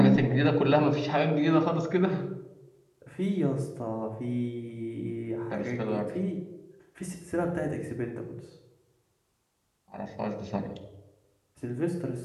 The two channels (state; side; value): identical; both; correlation 1.00